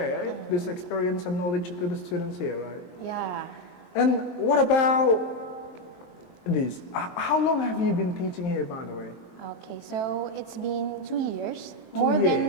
this experience and knowledge to the students here, right? Yeah. And what about this? How long have you been teaching here, by the way? Okay, so it's been 2 years, 2 more than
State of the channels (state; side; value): late; right; 23 ms